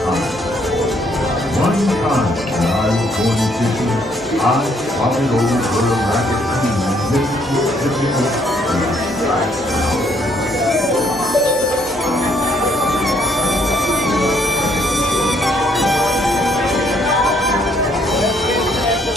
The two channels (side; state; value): both; normal; correlation 0.68